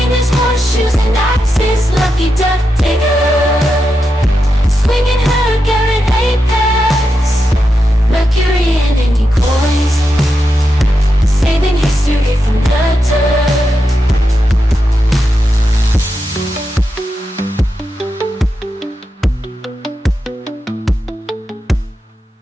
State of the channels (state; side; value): normal; both; correlation 0.87